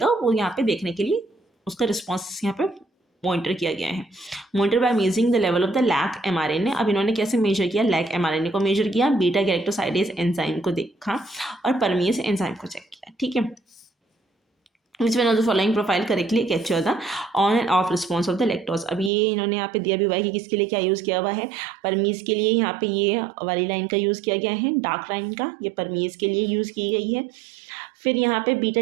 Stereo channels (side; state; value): left; drops out; at 19.1 s